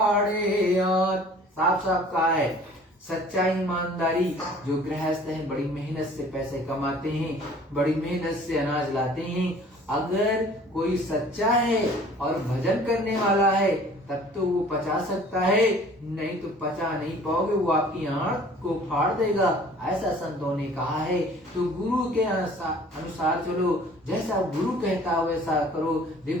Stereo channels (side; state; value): both; normal; correlation 0.51